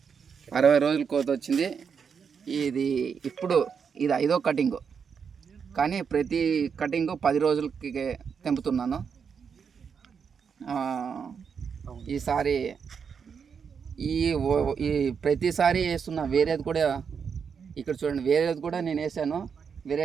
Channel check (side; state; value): left; quieter; 6.5 dB